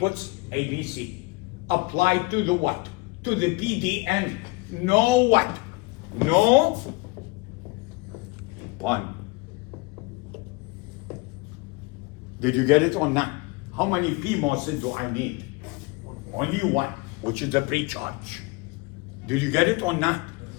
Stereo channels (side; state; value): right; quieter; 25.4 dB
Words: A, B, C. Applied to the what? To the PDN. No what? No 1. Did you get it or not? How many PMOSes do I need? Only 1, which is the pre-charge. Did you get it or not?